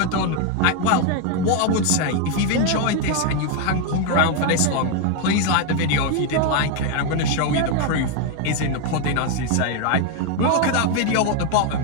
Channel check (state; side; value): different; both; correlation 0.01